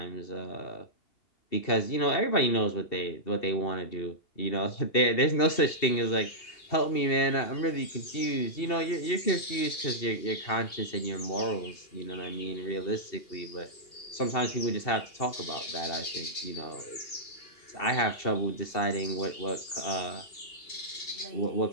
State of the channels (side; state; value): right; late; 2.7 ms